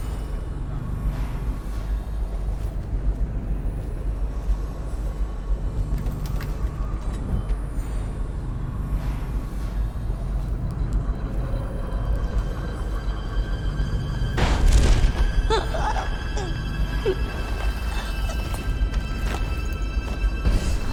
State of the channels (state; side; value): identical; both; correlation 1.00